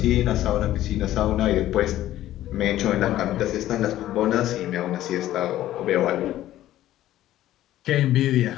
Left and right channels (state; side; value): quieter; right; 13.8 dB